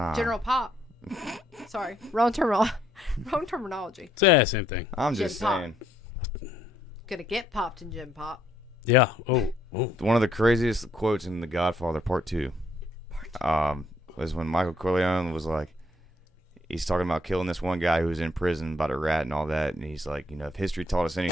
General pop. Sorry, wrong terminology. Yeah, same thing. I'm just saying. Gonna get popped in gym pop. Yeah. Oh. One of the craziest quotes in The Godfather Part 2. Was when Michael Corleone was like, he's talking about killing this one guy who was in prison about a rat and all that, and he's like, if history taught us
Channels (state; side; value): normal; both; correlation 0.70